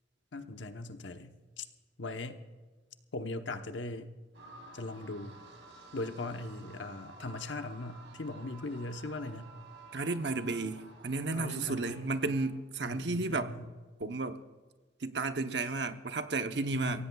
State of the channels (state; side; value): normal; both; correlation 0.38